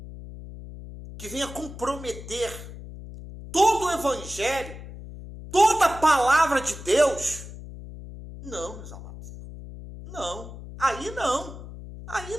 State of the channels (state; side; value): noise; left; hum, 13 dB below the sound